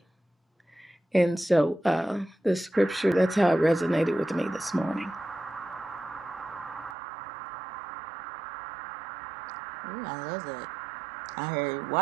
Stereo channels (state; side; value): drops out; left; at 7.0 s